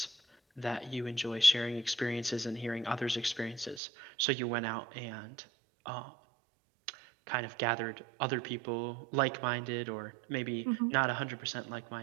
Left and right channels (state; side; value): drops out; left; at 3.8 s